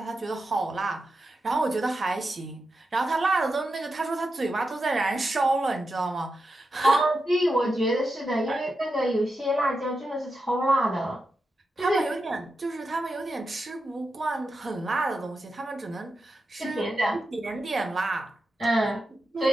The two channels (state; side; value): normal; both; correlation 0.88